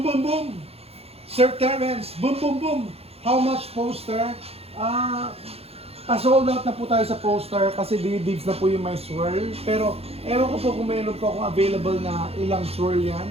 boom boom. Sir Terrence, boom boom boom. How much poster? Sold out na po tayo sa poster kasi dibs na po yung may swirl. Pero ewan ko po kung mayroon po akong available na ilang swirl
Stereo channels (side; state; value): left; late; 0.29 ms